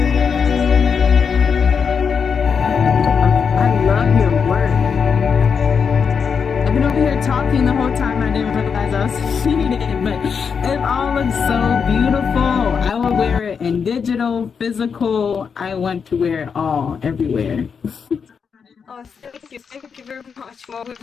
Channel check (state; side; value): quieter; right; 6.2 dB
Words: I love your work. I've been over here talking the whole time. I didn't realize I was feeding it, but it all looks so beautiful. I will wear it in digital, physical. I want to wear it all, everywhere. Oh, thank you very much, Mo.